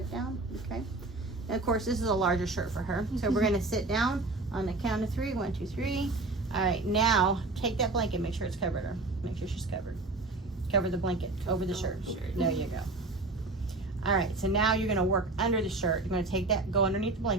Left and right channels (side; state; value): left; quieter; 3.2 dB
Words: down. Okay. And of course, this is a larger shirt for her. So we're gonna sit down on the count of 3. 1, 2, 3. All right. Now take that blanket. Make sure it's covered her. Make sure she's covered. Cover the blanket over the shirt. There you go. All right. So now you're gonna work under the shirt. You're gonna take that, go underneath the